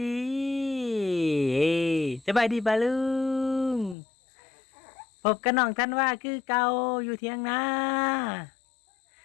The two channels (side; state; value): right; drops out; at 4.0 s